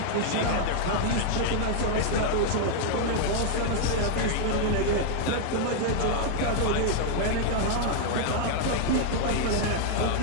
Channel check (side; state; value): both; different; correlation -0.01